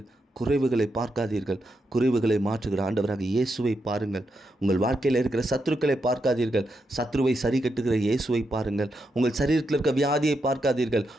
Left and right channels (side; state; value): both; normal; correlation 0.83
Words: குறைவுகளை பார்க்காதீர்கள், குறைவுகளை மாற்றுகிற ஆண்டவராக இயேசுவை பாருங்கள். உங்கள் வாழ்க்கையில் இருக்கிற சத்துருக்களை பார்க்காதீர்கள், சத்ருவை சரி கட்டுகிற இயேசுவை பாருங்கள். உங்கள் சரீரத்தில் இருக்க வியாதியை பார்க்காதீர்கள்,